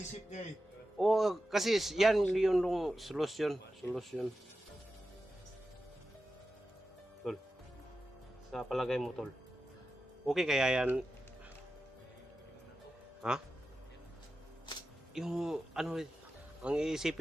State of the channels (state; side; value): normal; both; correlation 0.92